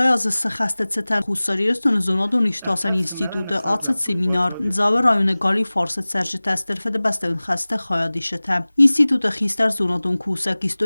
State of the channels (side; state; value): both; inverted; correlation -0.99